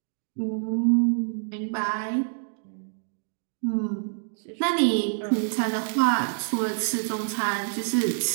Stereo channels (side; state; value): left; silent; digital silence